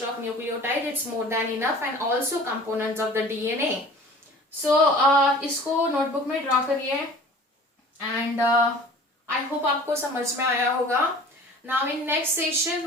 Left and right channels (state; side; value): normal; both; correlation 0.45